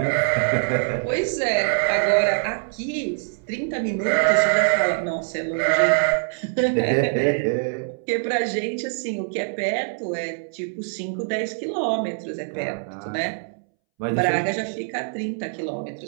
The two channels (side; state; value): left; silent; 63 dB below the other